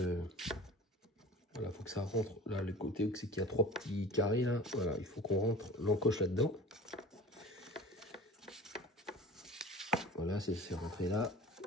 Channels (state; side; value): normal; both; correlation 0.41